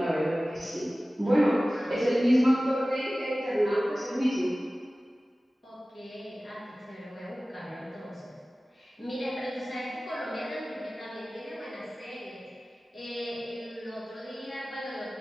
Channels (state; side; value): normal; both; correlation 0.97